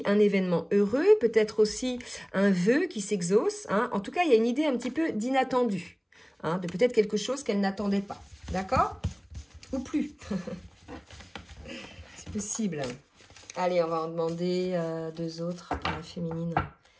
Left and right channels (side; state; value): both; identical; correlation 1.00